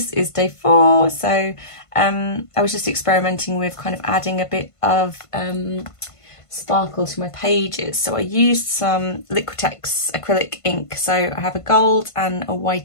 is day 4. So I was just experimenting with kind of adding a bit of sparkle to my pages. So I used some Liquitex acrylic ink. So I have a gold and a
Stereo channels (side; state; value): right; late; 1.5 ms